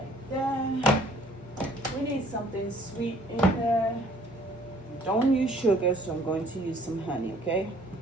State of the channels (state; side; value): normal; both; correlation 0.57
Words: there. We need something sweet in there. Don't use sugar, so I'm going to use some honey, okay?